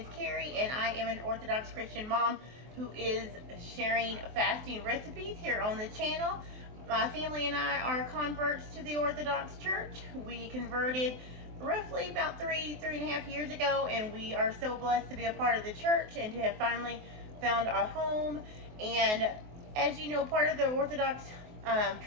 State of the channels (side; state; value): left; late; 23 ms